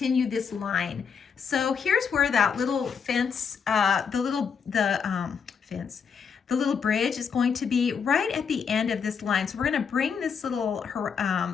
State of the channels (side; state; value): right; quieter; 6.4 dB